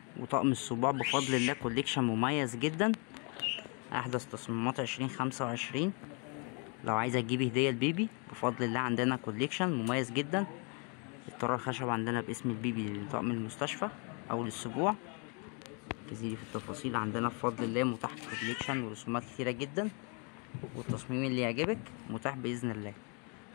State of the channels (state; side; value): quieter; right; 35.5 dB